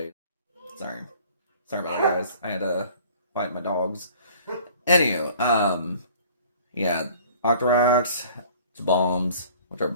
Sorry about that, guys. I had to fight my dogs. Anywho, yeah, Octoroks, bombs, which are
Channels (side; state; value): both; inverted; correlation -0.50